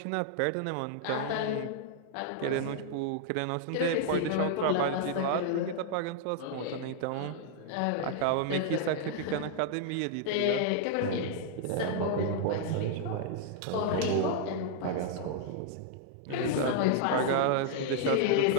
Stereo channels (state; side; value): different; both; correlation -0.01